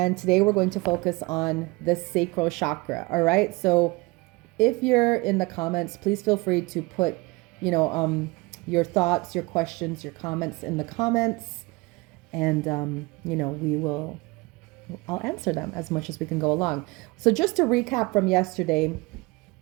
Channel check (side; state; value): left; quieter; 24.4 dB